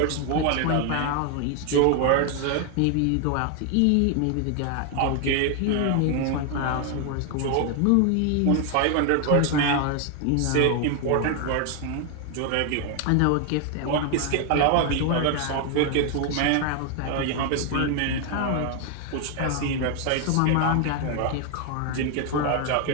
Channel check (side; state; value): both; different; correlation 0.00